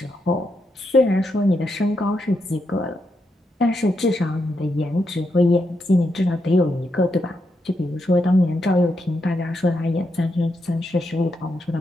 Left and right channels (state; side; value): normal; both; correlation 0.82